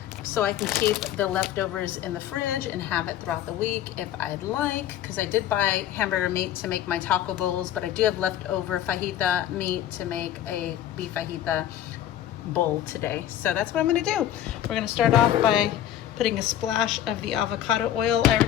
so I can keep the leftovers in the fridge and have it throughout the week if I'd like, because I did buy hamburger meat to make my taco bowls, but I do have leftover fajita meat to make a beef fajita bowl today. So that's what I'm going to do. We're going to start off by putting a splash of the avocado oil. I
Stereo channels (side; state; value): right; quieter; 11.6 dB